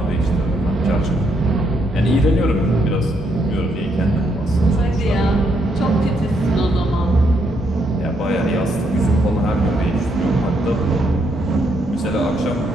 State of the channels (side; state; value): both; normal; correlation 0.75